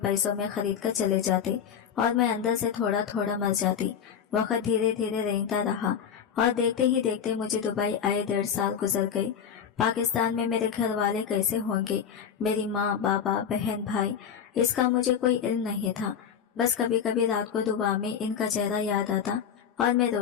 में खरीद कर चले जाते और मैं अंदर से थोड़ा थोड़ा मर जाती। वक्त धीरे धीरे रेंगता रहा और देखते ही देखते मुझे दुबई आए 1.5 साल गुजर गए। पाकिस्तान में मेरे घर वाले कैसे होंगे, मेरी माँ, बाबा, बहन, भाई, इसका मुझे कोई इल्म नहीं था। बस कभी कभी रात को दुआ में इनका चेहरा याद आता और मैं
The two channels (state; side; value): quieter; right; 7.9 dB